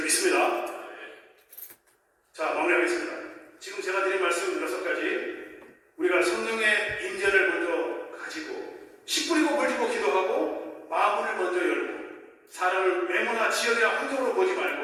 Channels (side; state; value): both; identical; correlation 1.00